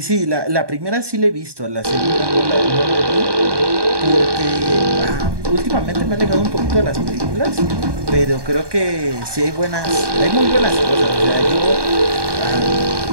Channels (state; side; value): late; left; 1.2 ms